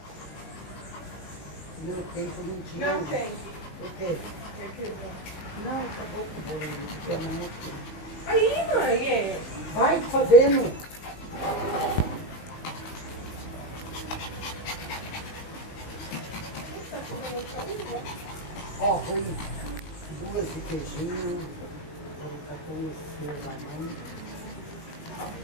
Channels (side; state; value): right; late; 19 ms